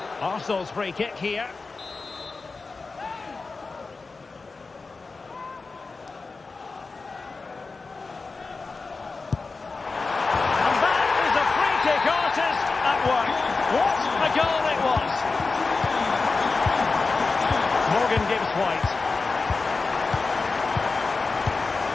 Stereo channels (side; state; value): right; quieter; 4.1 dB